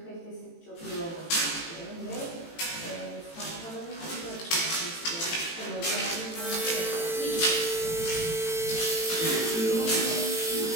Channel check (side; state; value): right; late; 18 ms